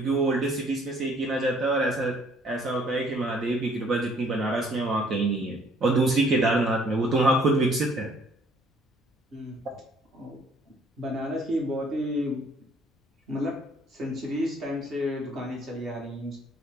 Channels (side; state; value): both; normal; correlation 0.60